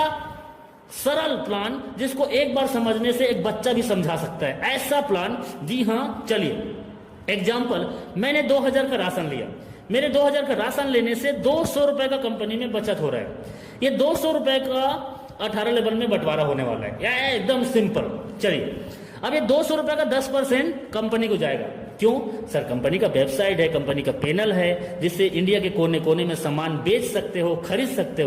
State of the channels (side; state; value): both; identical; correlation 1.00